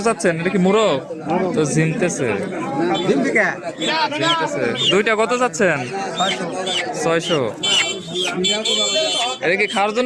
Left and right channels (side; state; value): both; identical; correlation 1.00